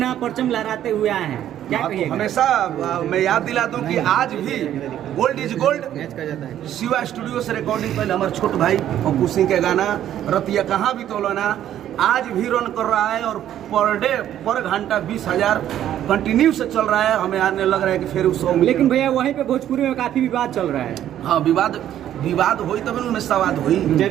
परचम लहराते हुए आए हैं, क्या कहिएगा? हमेशा मैं याद दिला दूं कि आज भी गोल्ड इज गोल्ड मैच का जाता है। शिवा स्टूडियो से रिकॉर्डिंग पहले हमारे छोट भाई अपू सिंह के गाना रतिया कहाँ भी तोलना आज भी रन कर रहा है और पर घंटा 20,000 कंटिन्यू से चल रहा है। हमें आने लग रहा है कि फिर उस लेकिन भैया वहीं पे भोजपुरी में काफी विवाद चल रहा है। हाँ, विवाद हुई तब उनमें सवाद हुई।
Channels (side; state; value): left; quieter; 11.3 dB